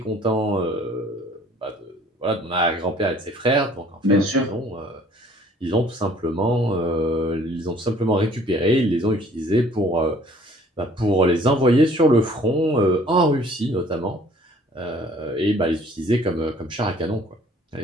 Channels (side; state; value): both; normal; correlation 0.56